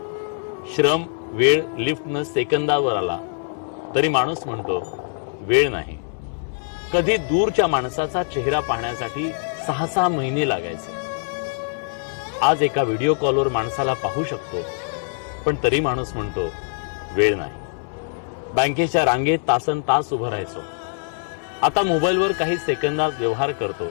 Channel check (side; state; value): right; silent; 63 dB below the other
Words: श्रम, वेळ लिफ्टनं सेकंदावर आला तरी माणूस म्हणतो वेळ नाही। कधी दूरच्या माणसाचा चेहरा पाहण्यासाठी 6-6 महिने लागायचे, आज एका व्हिडिओ कॉलवर माणसाला पाहू शकतो पण तरी माणूस म्हणतो वेळ नाही। बँकेच्या रांगेत तासनतास उभं राहायचो, आता मोबाईलवर काही सेकंदात व्यवहार करतो